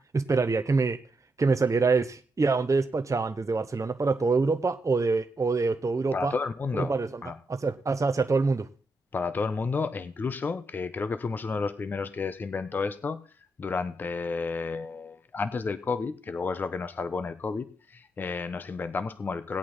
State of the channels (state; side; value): normal; both; correlation 0.82